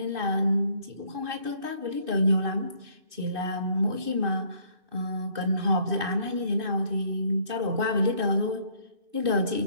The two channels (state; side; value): late; left; 2.6 ms